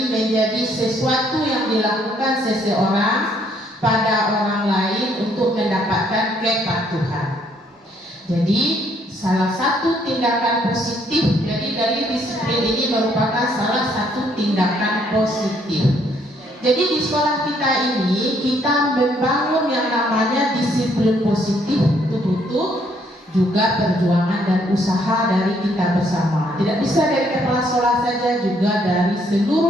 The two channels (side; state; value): both; normal; correlation 0.68